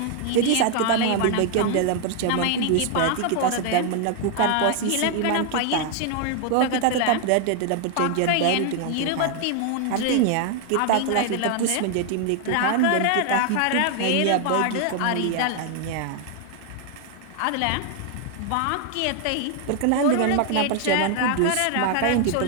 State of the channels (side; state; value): both; different; correlation 0.00